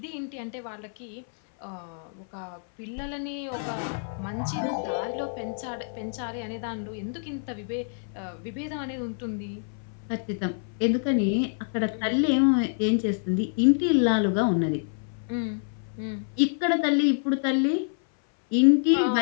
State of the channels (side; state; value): right; silent; 58 dB below the other